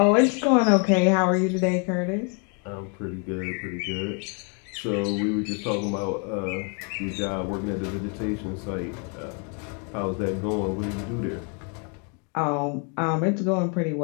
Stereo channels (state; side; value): quieter; right; 37.7 dB